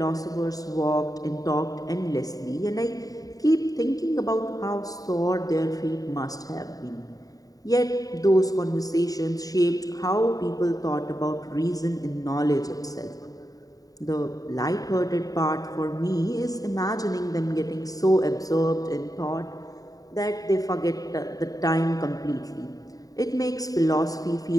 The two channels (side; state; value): right; late; 0.18 ms